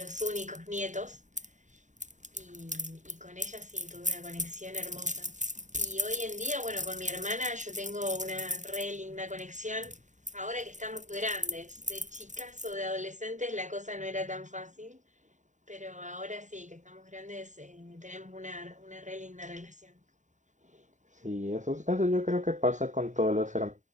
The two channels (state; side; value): late; left; 0.36 ms